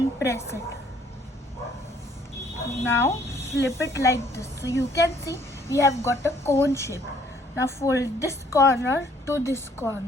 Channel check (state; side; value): normal; both; correlation 0.62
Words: press it. Now flip it like this. So you can see we have got a cone shape. Now fold this corner to this